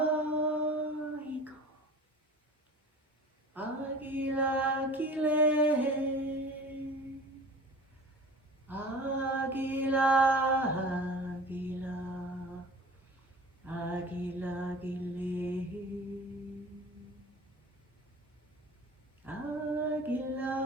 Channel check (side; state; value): both; normal; correlation 0.41